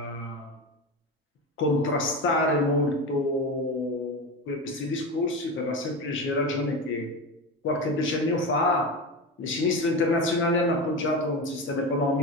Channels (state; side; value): normal; both; correlation 0.23